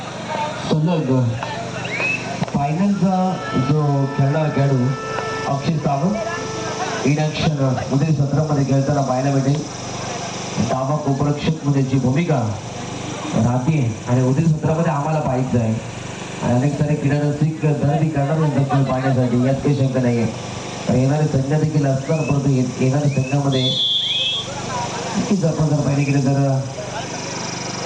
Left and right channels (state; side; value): identical; both; correlation 1.00